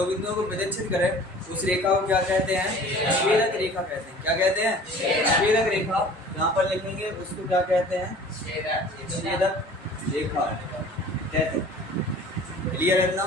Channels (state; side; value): normal; both; correlation 0.46